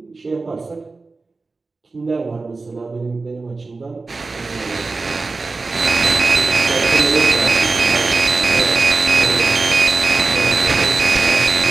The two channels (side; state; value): left; quieter; 3.8 dB